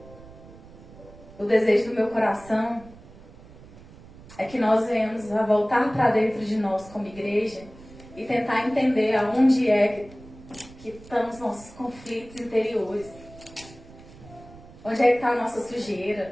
o desejo do meu coração é que nós venhamos a voltar para dentro de nós como igreja e tentar entender aonde é que estão os nossos conflitos interiores. Onde é que está a nossa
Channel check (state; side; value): noise; right; rumble, 20 dB below the sound